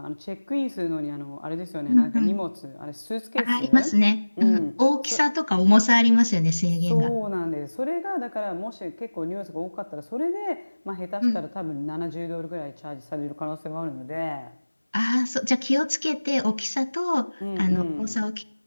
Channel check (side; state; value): both; inverted; correlation -1.00